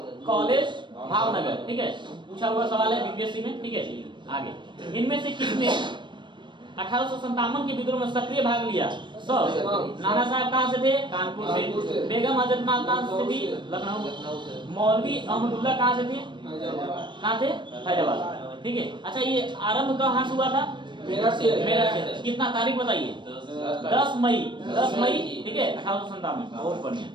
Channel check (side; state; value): left; late; 0.22 ms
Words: कॉलेज, भावनगर। ठीक है, पूछा हुआ सवाल है बीपीएससी में। ठीक है, आगे। इनमें से किसने 1857 के विद्रोह में सक्रिय भाग लिया? सब। नाना साहब कहाँ से थे? कानपुर से। बेगम हजरत महल कहाँ से थी? लखनऊ। मौलवी अहमदुल्ला कहाँ से थे? कहाँ थे? फैजाबाद। ठीक है, अच्छा, ये आरंभ कहाँ से हुआ था? मेरठ से। कितना तारीख बताइए? 10 मई। 10 मई। ठीक है, 1857। बहुत बढ़िया।